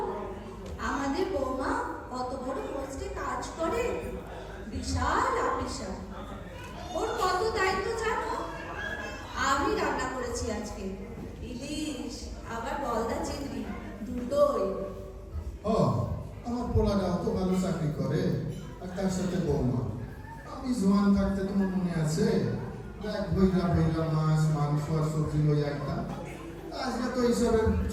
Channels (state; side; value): identical; both; correlation 1.00